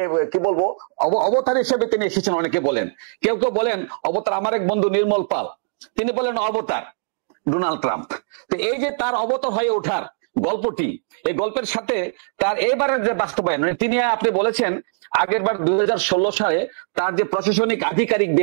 কি বলবো অবতার হিসেবে তিনি এসেছেন। অনেকে বলেন, কেউ কেউ বলেন অবতার। আমার এক বন্ধু নির্মল পাল, তিনি বলেন অবতার ডোনাল্ড ট্রাম্প। তো এই যে তার অবতার হয়ে ওঠার গল্পটি, এই গল্পের সাথে তার এবারের যে বাস্তবায়ন, মানে তিনি আপনি বলেছেন আগের বার 2016 সালে তার যে প্রশাসনিক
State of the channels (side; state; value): left; silent; digital silence